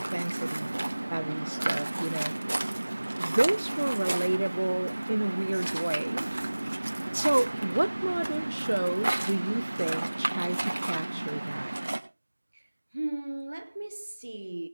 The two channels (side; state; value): both; inverted; correlation -1.00